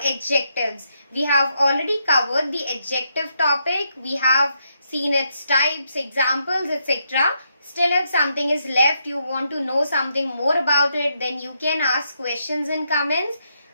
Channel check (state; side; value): inverted; both; correlation -0.79